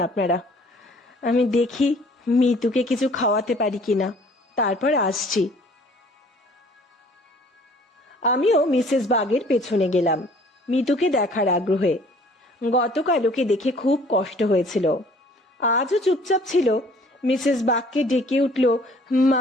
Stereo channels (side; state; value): both; normal; correlation 0.55